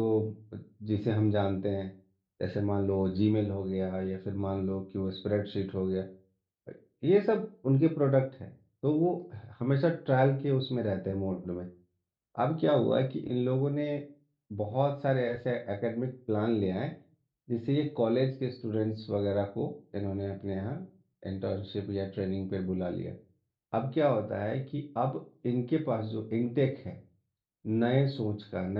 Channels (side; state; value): both; identical; correlation 1.00